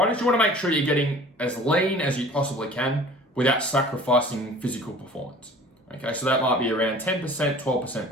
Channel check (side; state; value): both; normal; correlation 0.46